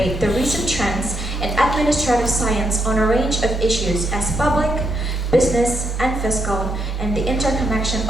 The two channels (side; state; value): both; normal; correlation 0.78